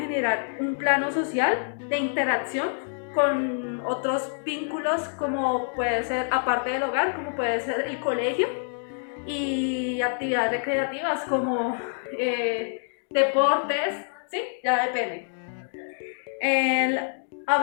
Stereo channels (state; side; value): silent; right; digital silence